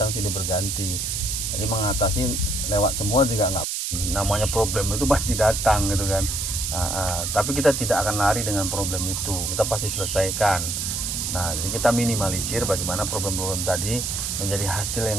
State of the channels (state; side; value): noise; right; hiss, 2 dB below the sound